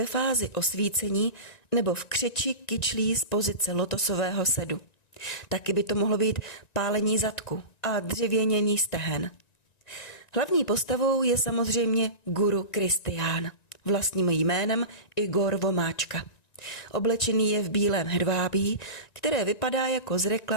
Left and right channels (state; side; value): late; right; 1.9 ms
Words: fázi osvícení nebo v křeči kyčlí z pozice lotosového sedu. Taky by to mohlo být pálení zadku a dřevěnění stehen. Hlavní postavou je samozřejmě guru Kristián, vlastním jménem Igor Vomáčka. Oblečený je v bílém hedvábí, které vypadá jako z